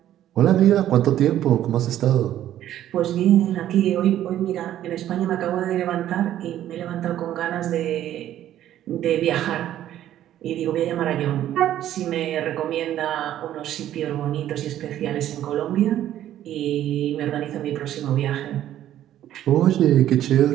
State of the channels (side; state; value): left; quieter; 12.1 dB